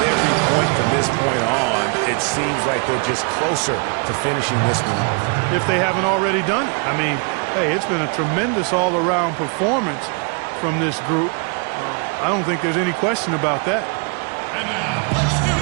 point from this point on, it seems like they're just closer to finishing this one off. If they haven't already done it. I mean, hey, it's been a tremendous all-around performance from this group. I don't think there's any question about that. And now, let's do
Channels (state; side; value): quieter; left; 36.4 dB